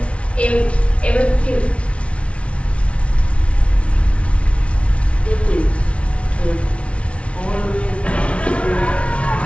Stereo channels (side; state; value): right; late; 0.062 ms